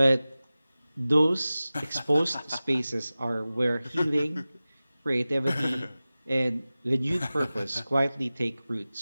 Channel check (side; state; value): both; inverted; correlation -0.97